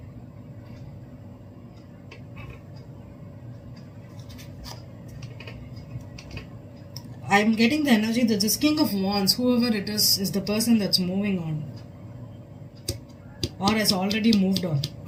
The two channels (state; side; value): identical; both; correlation 1.00